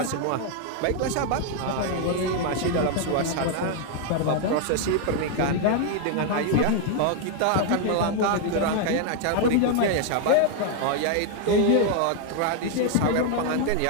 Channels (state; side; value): different; both; correlation 0.00